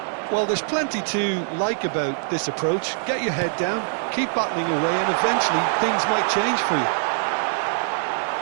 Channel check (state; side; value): silent; left; digital silence